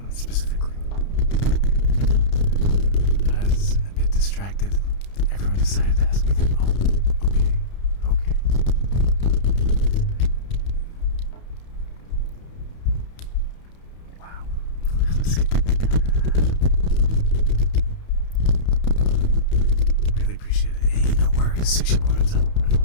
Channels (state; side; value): late; right; 31 ms